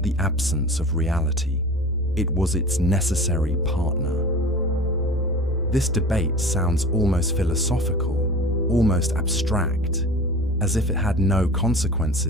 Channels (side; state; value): both; normal; correlation 0.37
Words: the absence of reality, it was its necessary partner. This debate sounds almost philosophical, almost abstract, as if it had no